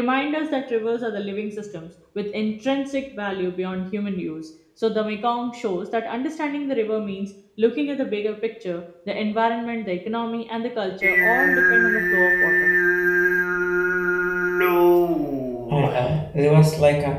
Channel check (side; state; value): both; identical; correlation 1.00